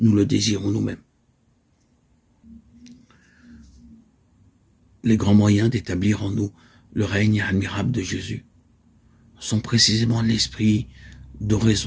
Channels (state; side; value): identical; both; correlation 1.00